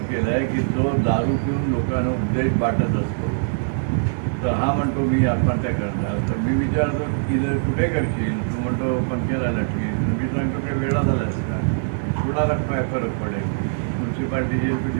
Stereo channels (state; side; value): silent; left; digital silence